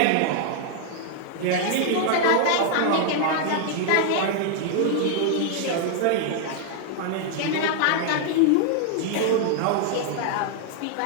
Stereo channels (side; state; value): both; different; correlation 0.00